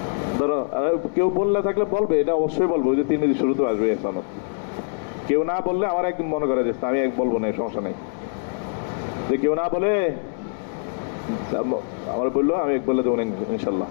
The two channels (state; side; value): silent; right; 63 dB below the other